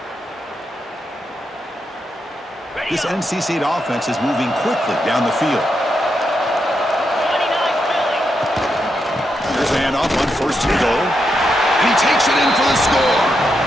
This NC State offense is moving quickly down the field. Here's a handoff on 1st and goal. And he takes it in for the score.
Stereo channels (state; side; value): normal; both; correlation 0.83